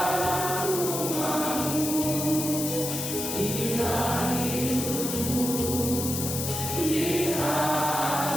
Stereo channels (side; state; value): left; noise; hiss, 3 dB below the sound